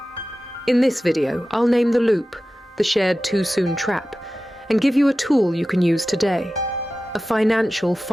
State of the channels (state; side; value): normal; both; correlation 0.95